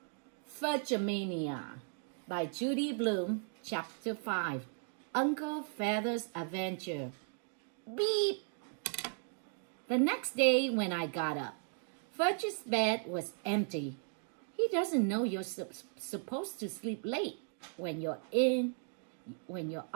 Fudge-a-Mania by Judy Blume, Chapter 5, Uncle Feather's Adventure. Beep! The next day when I got up, Fudge's bed was empty. He doesn't know you're supposed to sleep late when you're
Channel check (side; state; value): left; silent; 53 dB below the other